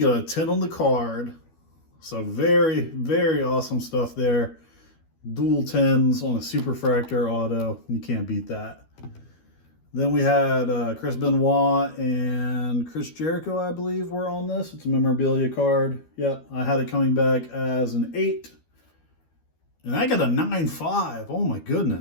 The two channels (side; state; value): right; late; 12 ms